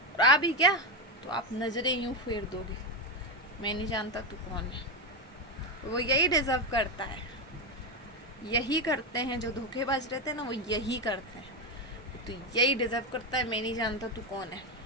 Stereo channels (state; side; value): normal; both; correlation 0.11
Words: और आ भी क्या तो आप नज़रें यूं फेर दोगे, मैं नहीं जानता तू कौन है। वो यही डिजर्व करता है, यही करते हैं जो धोखेबाज रहते हैं ना, वो यही करते हैं। तो यही डिजर्व करता है, मैं नहीं जानता तू कौन है।